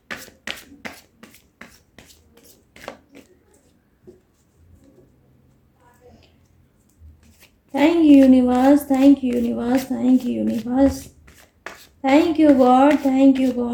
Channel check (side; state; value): both; identical; correlation 1.00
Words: Thank you universe, thank you universe, thank you universe, thank you God, thank you